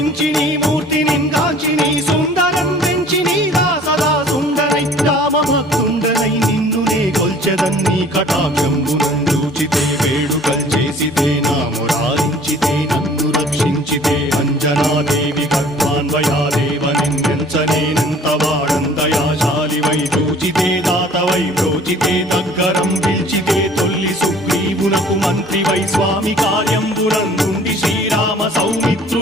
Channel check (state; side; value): normal; both; correlation 0.51